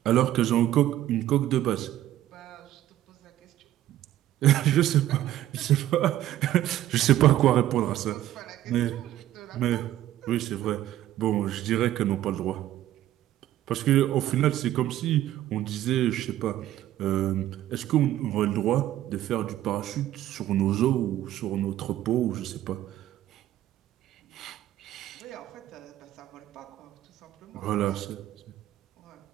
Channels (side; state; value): left; quieter; 13.3 dB